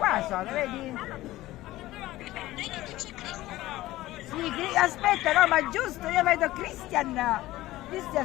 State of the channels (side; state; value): right; quieter; 16.7 dB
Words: sono, vedi? Sì, aspetta, no, ma giusto, io vedo Christian,